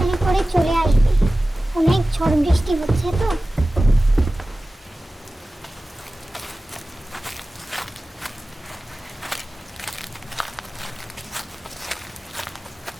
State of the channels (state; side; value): normal; both; correlation 0.97